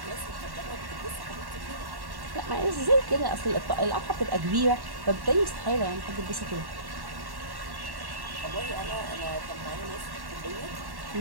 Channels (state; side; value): late; left; 1.1 ms